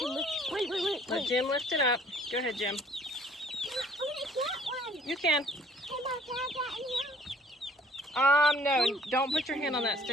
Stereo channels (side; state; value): both; normal; correlation 0.57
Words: Wait. Let Jim lift it up. Go ahead, Jim. You can. No, don't put your hand on that